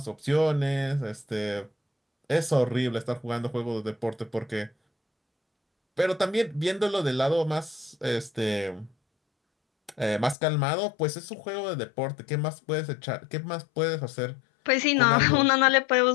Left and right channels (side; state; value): right; drops out; at 10.4 s